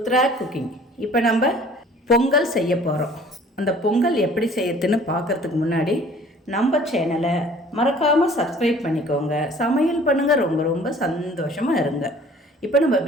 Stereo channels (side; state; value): both; normal; correlation 0.51